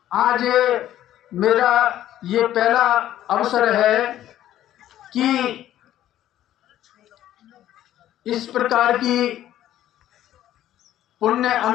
आज मेरा ये पहला अवसर है कि इस प्रकार की पुण्य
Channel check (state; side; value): quieter; right; 12.5 dB